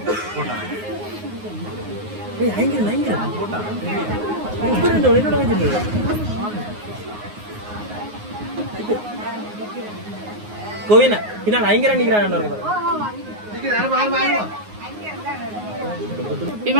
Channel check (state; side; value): late; left; 9.5 ms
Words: கோவினா பின்னால் ஐங்கரா நிக்கிறான்.